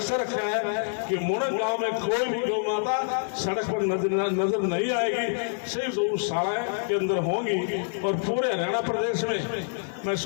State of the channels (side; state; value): right; silent; 60 dB below the other